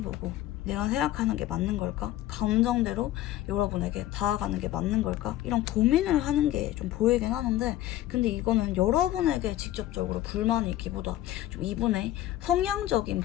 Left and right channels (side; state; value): right; quieter; 14.1 dB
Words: 내가 생각하는 게 맞는 걸까? 감정대로 여러분에게 다가가는 게 맞는 걸까? 이런 고민을 하는 게 좀 보이긴 하는데 근데 이거는 여러분에게 직접적으로 불만이 있기보다 좀 이분의 성향적인